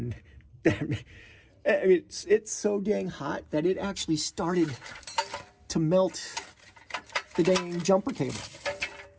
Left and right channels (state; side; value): identical; both; correlation 1.00